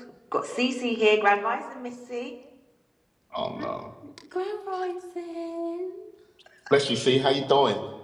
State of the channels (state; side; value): identical; both; correlation 1.00